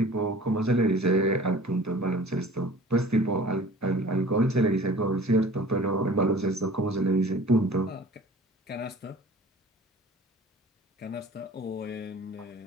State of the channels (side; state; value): both; normal; correlation 0.46